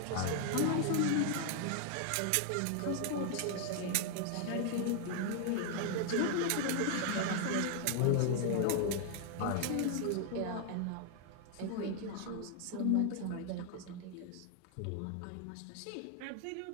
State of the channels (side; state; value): both; different; correlation 0.00